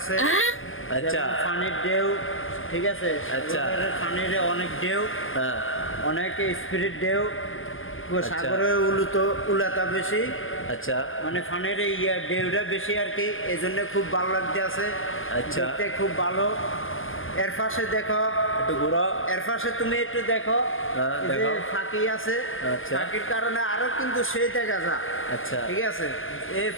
আচ্ছা, পানির ঢেউ, ঠিক আছে। আচ্ছা, পানির অনেক ঢেউ, হ্যাঁ, অনেক স্পিরিট ঢেউ। সাগরে উলাতা বেশি, আচ্ছা, মানে পানির ঢেউটা বেশি আর কি, এই জন্য খুব ভালো লাগতেছে। আচ্ছা, দেখতে খুব ভালো। এর পাশে দেখো একটু ঘুরো, এর পাশে তুমি একটু দেখো, দেখো ফাঁকি আছে। আচ্ছা, ফাঁকির কারণে আরো কিন্তু সেই দেখা যায়। আচ্ছা, ঠিক আছে। এই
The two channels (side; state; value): right; late; 0.59 ms